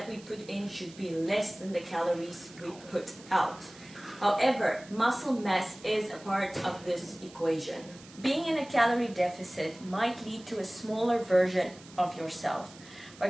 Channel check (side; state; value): right; noise; hiss, 21 dB below the sound